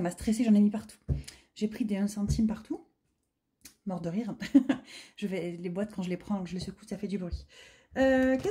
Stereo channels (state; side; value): identical; both; correlation 1.00